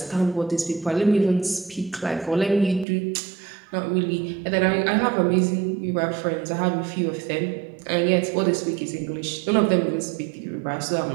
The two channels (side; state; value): left; drops out; at 2.9 s